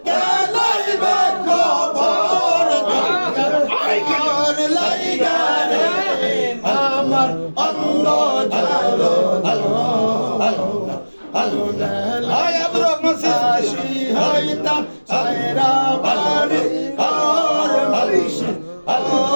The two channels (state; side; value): inverted; both; correlation -1.00